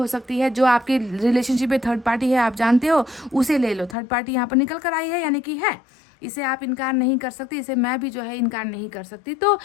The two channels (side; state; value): right; drops out; at 4.0 s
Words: सकती है। जो आपके रिलेशनशिप में थर्ड पार्टी है, आप जानते हो, उसे ले लो। थर्ड पार्टी यहाँ पर निकल कर आई है, यानी कि है, इसे आप इनकार नहीं कर सकते, इसे मैं भी जो है इनकार नहीं कर सकती। तो